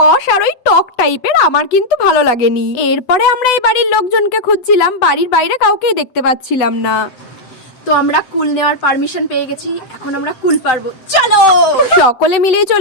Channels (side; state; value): right; late; 8.0 ms